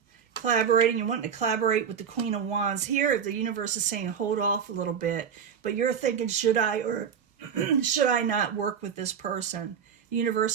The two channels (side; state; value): left; quieter; 7.5 dB